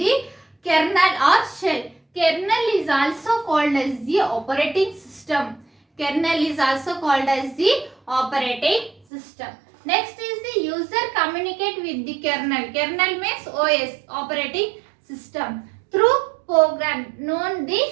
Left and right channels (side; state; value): left; drops out; at 9.0 s